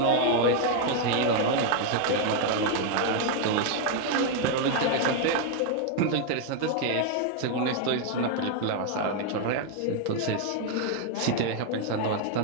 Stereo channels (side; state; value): both; different; correlation 0.00